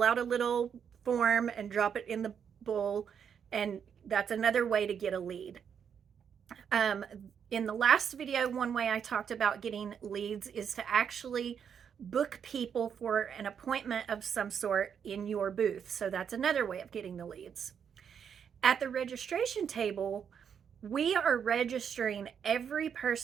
out a little form and drop it in the bowl, and that's another way to get a lead. In the last video, one way I talked about getting leads is to actually book people for an appointment of some sort in your booth. So that's another way of getting the leads. At the registration table, we are registering every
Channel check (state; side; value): quieter; left; 7.6 dB